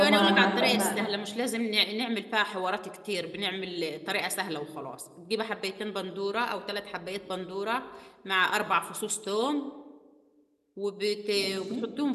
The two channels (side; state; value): both; identical; correlation 1.00